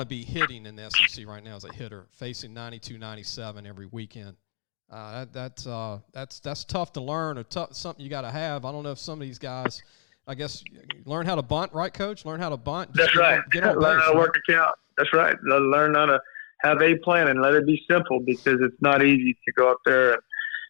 be hitting in the SEC right now as a hitter, facing 92, 97 every weekend. That's tough to learn, or something you got to have. I don't know if some of these guys, I guess, learn how to bunt, right, Coach? Learn how to bunt. That's right. Get on base. Learn how to work a count. That's right. Learn how to have a plan and let it be simple, because it's not easy to go up there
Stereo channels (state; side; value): silent; right; 62 dB below the other